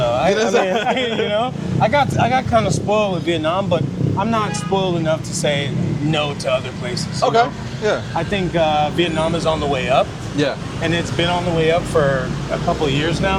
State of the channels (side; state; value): both; identical; correlation 1.00